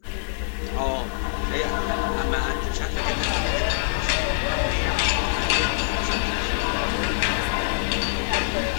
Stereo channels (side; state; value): right; silent; 62 dB below the other